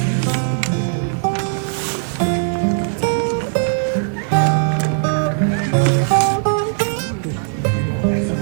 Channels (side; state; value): left; silent; 55 dB below the other